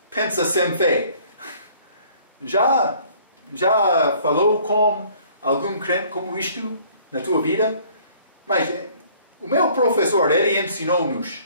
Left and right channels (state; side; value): inverted; both; correlation -0.56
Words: pensa sem fé. Já falou com algum crente como isto na tua vida? Mas o meu professor, ele ensinou-nos,